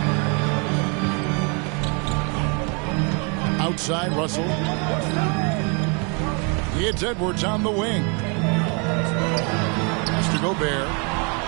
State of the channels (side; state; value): left; quieter; 34.2 dB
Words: Outside, Russell. It's Edwards on the wing. Mr. Gobert.